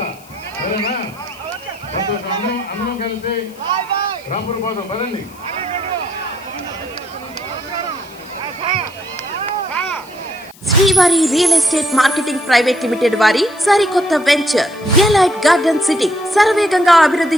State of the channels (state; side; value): noise; left; hiss, 24 dB below the sound